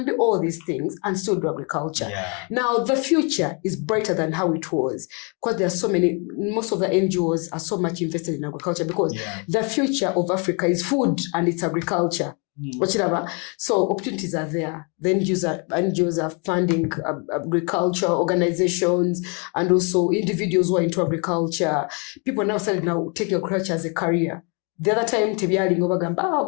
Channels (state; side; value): quieter; right; 34.8 dB